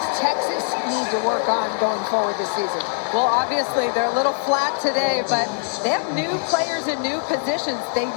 Texas need to work on going forward this season? Well, obviously, they're a little flat today, but they have new players in new positions. They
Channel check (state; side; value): silent; right; digital silence